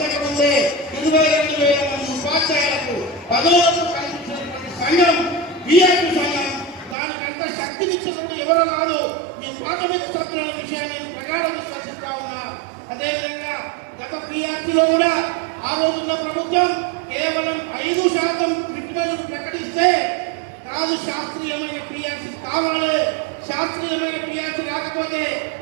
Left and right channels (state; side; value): drops out; left; at 7.0 s